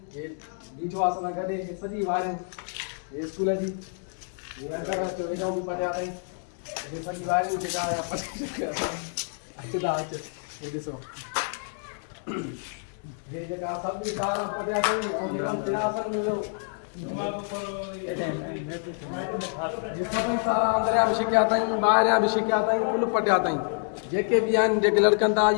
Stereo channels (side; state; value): right; silent; 60 dB below the other